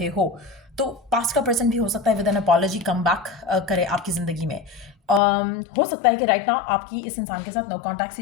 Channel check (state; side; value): drops out; right; at 5.2 s